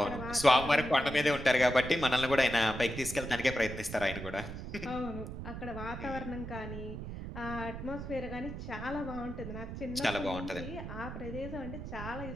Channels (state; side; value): noise; right; rumble, 8 dB below the sound